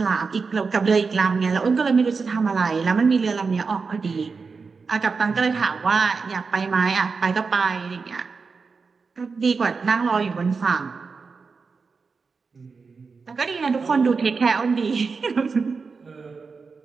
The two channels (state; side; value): quieter; left; 4.8 dB